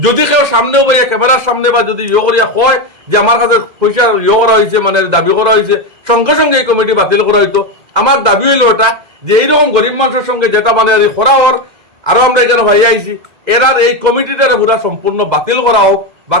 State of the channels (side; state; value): left; late; 2.0 ms